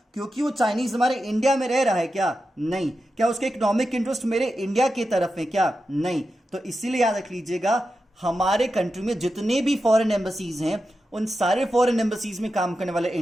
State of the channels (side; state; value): both; normal; correlation 0.90